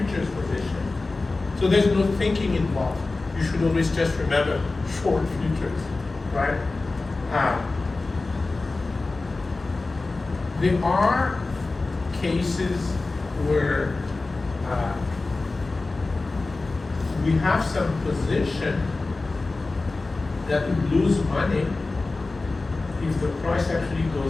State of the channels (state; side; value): quieter; right; 3.5 dB